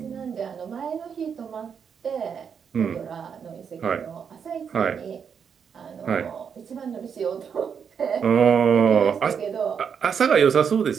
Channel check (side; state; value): left; quieter; 7.0 dB